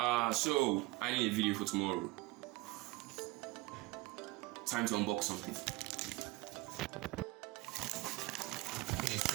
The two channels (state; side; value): quieter; left; 20.8 dB